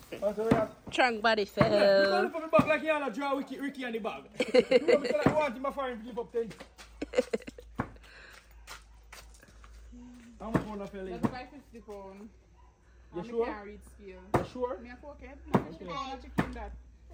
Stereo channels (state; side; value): identical; both; correlation 1.00